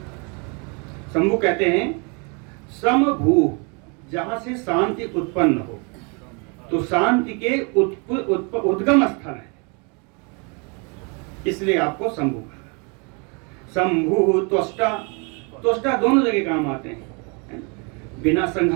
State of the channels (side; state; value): left; quieter; 33.4 dB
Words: शंभु कहते हैं समभू, जहां से शांति उत्पन्न हो, तो शांति के उद्गम स्थल है, इसलिए आपको शंभु कहा। शंभु त्वष्टा, त्वष्टा दोनों जगह काम आते हैं, बिना